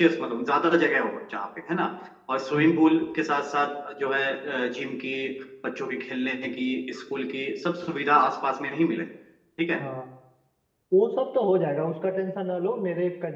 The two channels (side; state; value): both; identical; correlation 1.00